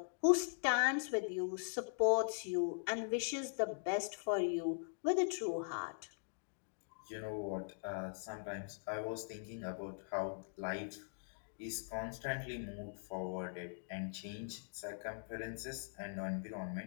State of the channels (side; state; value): right; silent; digital silence